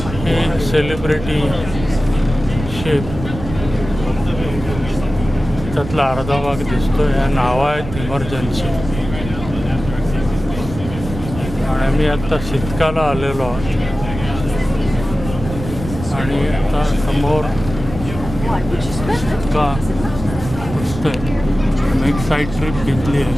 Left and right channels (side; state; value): right; noise; rumble, 9 dB below the sound